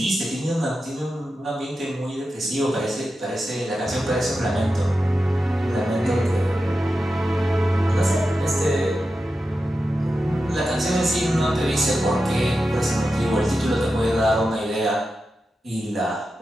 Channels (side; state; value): both; normal; correlation 0.91